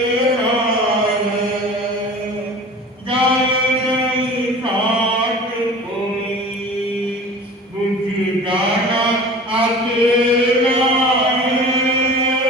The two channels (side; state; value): both; normal; correlation 0.40